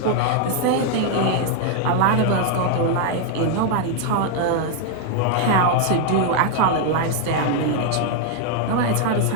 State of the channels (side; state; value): both; different; correlation 0.00